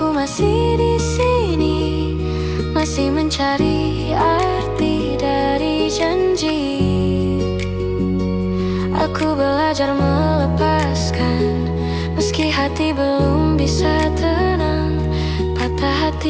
masih di sini, masih mencari arti dari janji. Aku belajar melepaskan, meski hati belum bisa tenang. Patah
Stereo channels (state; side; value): identical; both; correlation 1.00